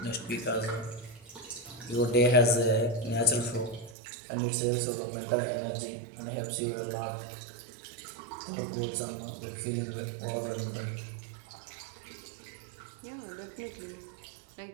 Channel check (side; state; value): left; drops out; at 4.0 s